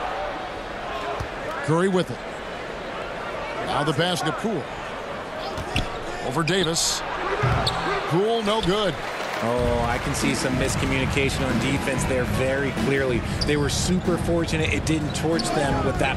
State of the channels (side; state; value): both; identical; correlation 1.00